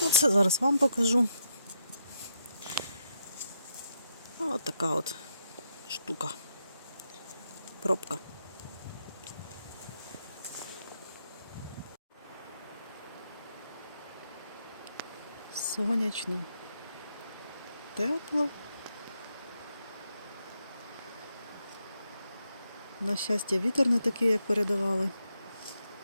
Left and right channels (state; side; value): inverted; both; correlation -0.79